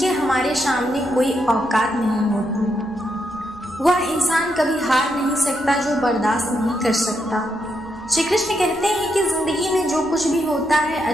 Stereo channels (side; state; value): left; noise; rumble, 25 dB below the sound